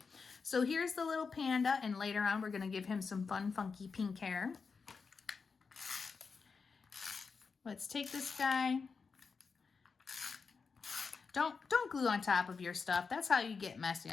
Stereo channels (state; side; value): quieter; right; 5.1 dB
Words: So here's the little panda, and later on we're going to give him some fun, funky pink hair. Let's take this guy. Don't glue on top of your stuff. That's how you get messy.